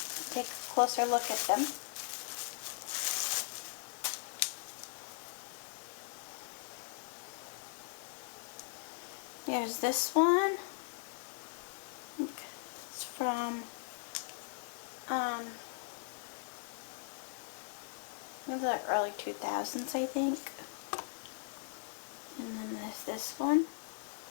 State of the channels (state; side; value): silent; right; digital silence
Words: take a closer look at them. There's this one. It's from in the early 2000s, I think. And then there's this one.